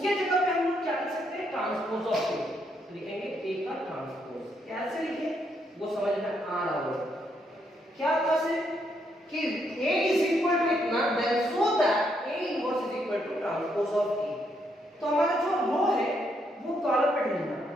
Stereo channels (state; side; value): normal; both; correlation 0.75